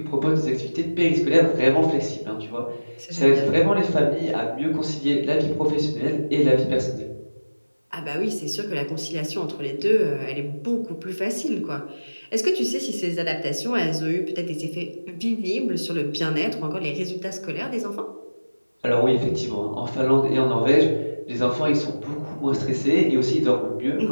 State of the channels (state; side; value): inverted; both; correlation -1.00